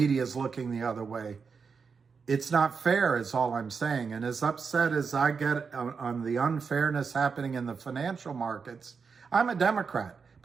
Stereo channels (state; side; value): quieter; left; 5.5 dB